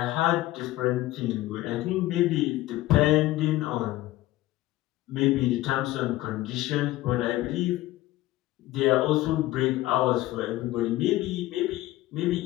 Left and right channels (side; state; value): right; quieter; 16.5 dB